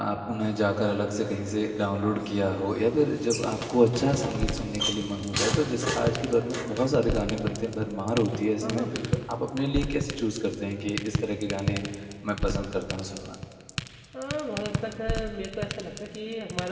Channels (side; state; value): both; identical; correlation 1.00